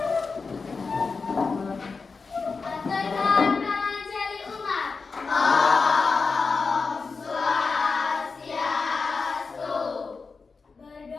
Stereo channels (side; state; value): right; quieter; 4.6 dB